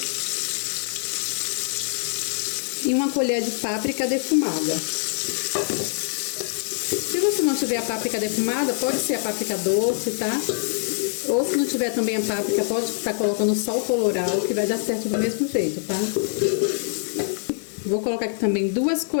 E uma colher de páprica defumada. Se você não tiver a páprica defumada, pode ser a páprica doce, tá? Ou se não tiver também a páprica, pode estar colocando só o colorau, que vai dar certo do mesmo jeito, tá? Vou colocar aqui também 2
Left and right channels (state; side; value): silent; right; digital silence